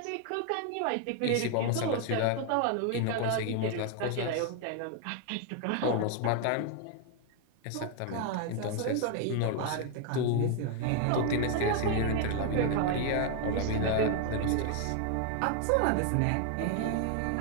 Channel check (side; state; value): both; different; correlation 0.00